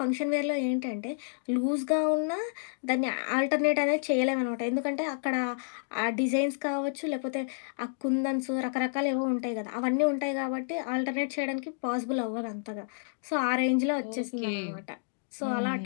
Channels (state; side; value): silent; right; digital silence